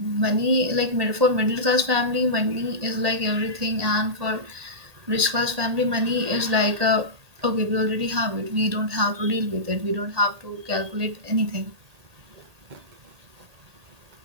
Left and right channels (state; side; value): late; left; 1.8 ms